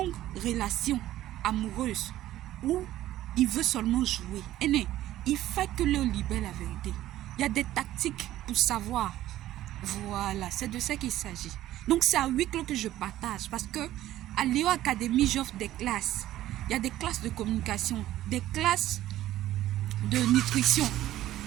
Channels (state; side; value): quieter; left; 14.0 dB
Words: relation amoureuse ou il veut seulement jouer. Il faut que Léo libère la vérité. Il y a des tactiques pour savoir. Voilà, c'est de ça qu'il s'agit. Donc c'est à huis clos que je partage parce que à Léo Academy, j'offre des classes. Il y a des classes de communication, des classes de nutrition.